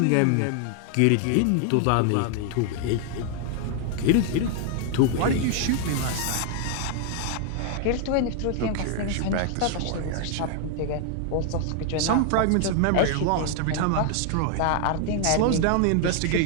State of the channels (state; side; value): different; both; correlation 0.00